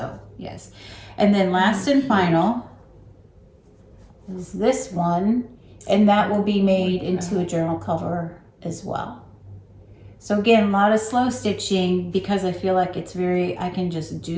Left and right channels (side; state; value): both; identical; correlation 1.00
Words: yes. And then last and final is this one, and that will be made into a journal cover as well. So again, a lot of slow stitching because I feel like I can just